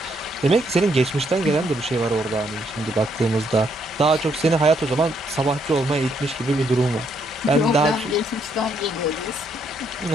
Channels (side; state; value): both; normal; correlation 0.73